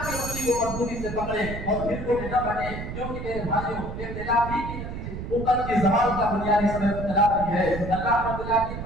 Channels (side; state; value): right; noise; rumble, 7 dB below the sound